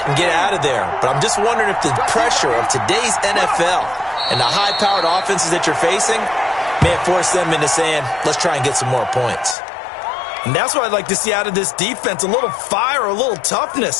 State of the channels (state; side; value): drops out; right; at 9.6 s